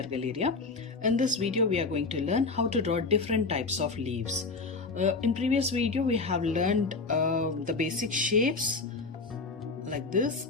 Galleria. In this video we are going to learn how to draw different types of leaves. In previous video we have learned the basic shapes like this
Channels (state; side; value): quieter; right; 3.9 dB